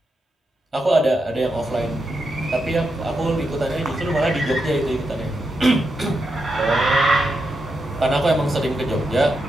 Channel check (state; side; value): normal; both; correlation 0.85